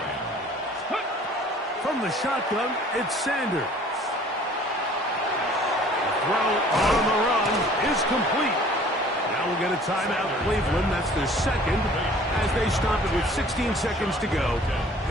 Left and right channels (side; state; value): both; normal; correlation 0.51